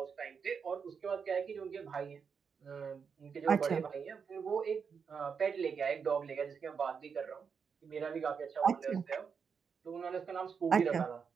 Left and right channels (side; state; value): left; quieter; 6.2 dB